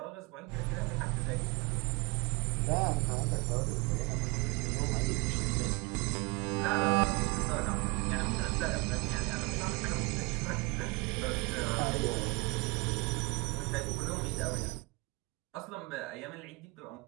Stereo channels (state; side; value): quieter; left; 26.4 dB